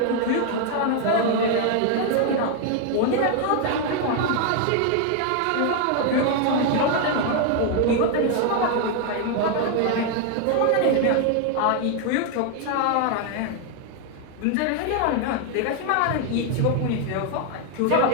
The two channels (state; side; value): different; both; correlation 0.00